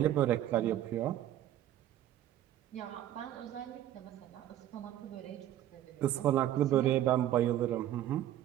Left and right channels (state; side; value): quieter; left; 12.3 dB